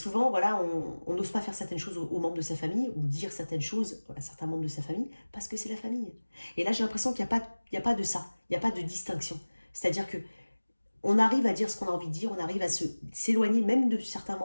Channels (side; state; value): both; inverted; correlation -1.00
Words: voilà, on n'ose pas faire certaines choses aux membres de sa famille ou dire certaines choses à certains membres de sa famille parce que c'est la famille. Et là, j'ai l'impression qu'il n'y a pas de ça. Il n'y a pas de distinction. C'est-à-dire que on arrive à dire ce qu'on a envie de dire, on arrive à s'éloigner même de certains